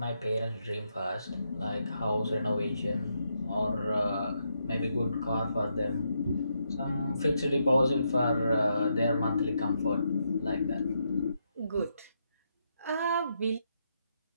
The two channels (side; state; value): both; inverted; correlation -0.80